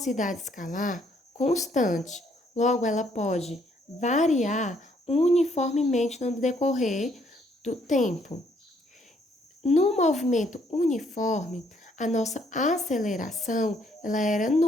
escalar constante. Logo, ela pode variar uniformemente no decorrer do tempo. No movimento uniforme, a nossa aceleração ela era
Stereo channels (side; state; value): both; normal; correlation 0.68